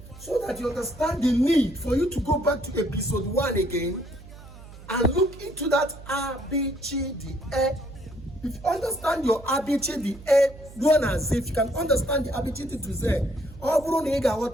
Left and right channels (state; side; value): noise; right; hum, 17 dB below the sound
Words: so that you understand the need for you to go back to episode 1 again and look into that ABCDE. If you understand your ABCDE, ruo na Z. If you can understand the ABCD to Z, ọ bụrụ na ị